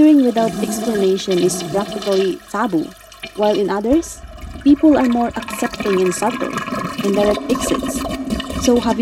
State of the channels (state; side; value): identical; both; correlation 1.00